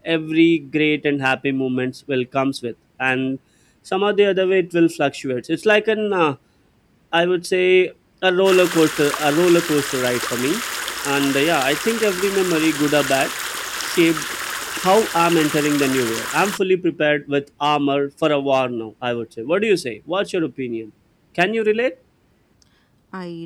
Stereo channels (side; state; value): both; identical; correlation 1.00